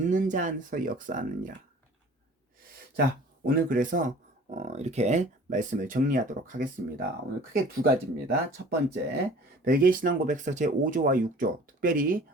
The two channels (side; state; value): both; normal; correlation 0.48